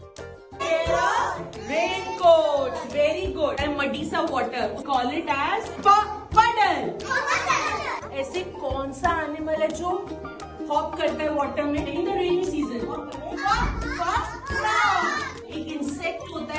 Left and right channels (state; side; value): identical; both; correlation 1.00